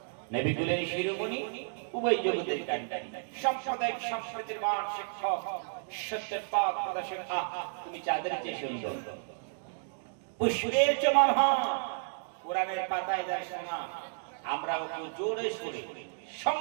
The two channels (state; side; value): silent; left; digital silence